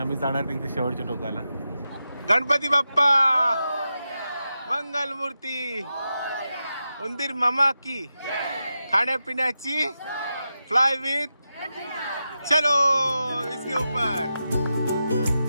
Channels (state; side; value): inverted; both; correlation -0.89